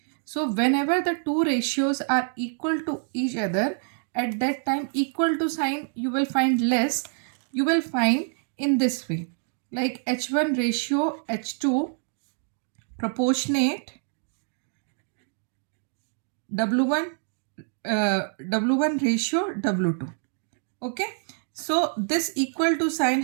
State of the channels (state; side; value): silent; left; 61 dB below the other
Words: So whenever the two ratios are equal to each other, at that time equal to sign you will find less. You will find in this way, like h1 ratio h2 proportionate w1 w1 ratio w2. Okay, so this equal to sign